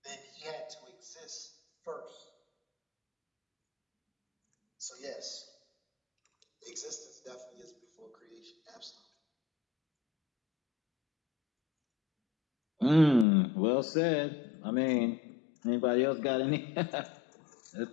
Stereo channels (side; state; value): right; drops out; at 13.2 s